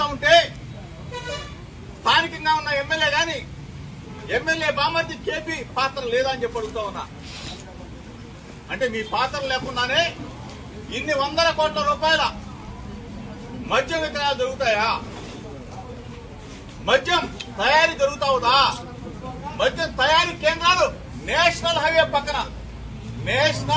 ఉంటే స్థానికంగా ఉన్న ఎమ్మెల్యే గాని, ఎమ్మెల్యే బామర్ది కేపీ పాత్ర లేదా అని చెప్పి అడుగుతా ఉన్నా. అంటే మీ పాత్ర లేకుండానే ఇన్ని వందల కోట్ల రూపాయల మద్యం విక్రయాలు జరుగుతాయా? మద్యం తయారీ జరుగుతావుదా? మద్యం తయారీ కేంద్రాలు నేషనల్ హైవే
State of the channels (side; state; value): both; identical; correlation 1.00